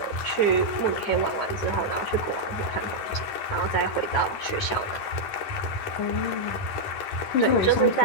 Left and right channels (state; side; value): late; right; 10 ms